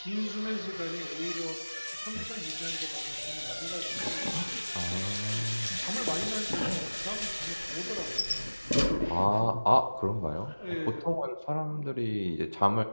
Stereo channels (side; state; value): both; inverted; correlation -1.00